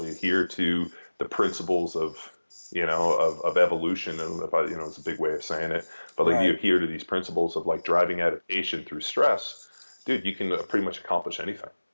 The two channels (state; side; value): inverted; both; correlation -1.00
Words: adhere to the principles of evolution, and it's a big way of saying it, but like, right, you adhere to these principles of like driving adaptation through stress, dude, you can pretty much accomplish anything.